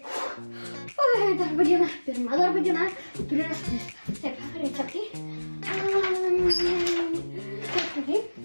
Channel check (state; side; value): inverted; both; correlation -1.00